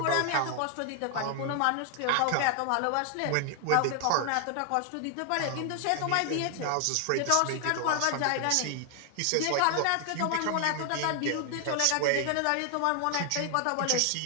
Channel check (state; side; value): different; both; correlation 0.00